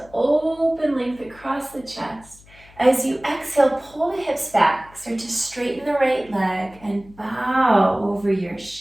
open length across the chest. As you exhale, pull the hips back. Start to straighten the right leg and bow over your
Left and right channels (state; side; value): noise; left; hum, 25 dB below the sound